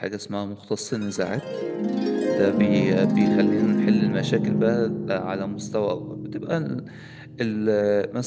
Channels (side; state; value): both; identical; correlation 1.00